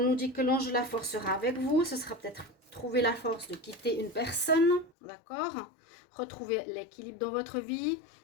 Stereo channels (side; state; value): right; drops out; at 4.9 s